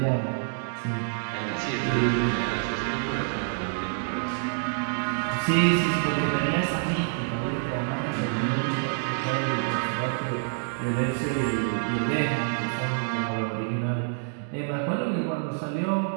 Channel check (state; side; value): silent; left; 60 dB below the other